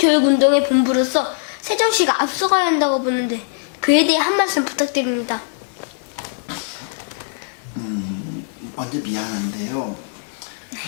본부로서 세종시가 앞서가야 한다고 보는데 그에 대해 한 말씀 부탁드립니다. 먼저 미안한데요.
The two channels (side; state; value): right; silent; digital silence